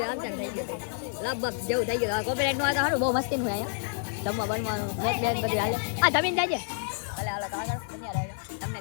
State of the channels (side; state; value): right; silent; digital silence